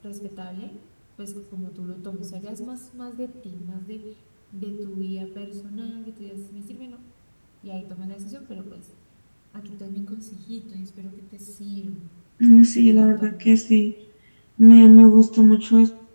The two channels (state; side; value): inverted; both; correlation -1.00